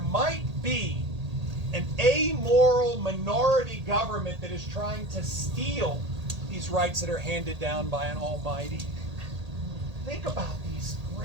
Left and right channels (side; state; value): left; late; 1.8 ms